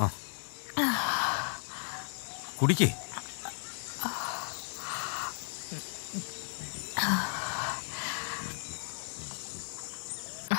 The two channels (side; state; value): right; silent; digital silence